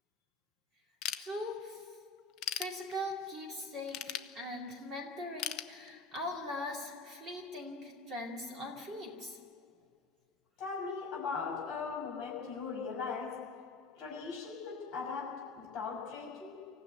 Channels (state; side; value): quieter; right; 3.8 dB